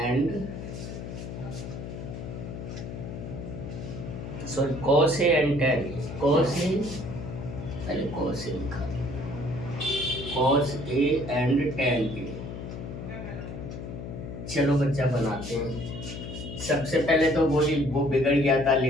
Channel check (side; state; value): left; noise; hum, 8 dB below the sound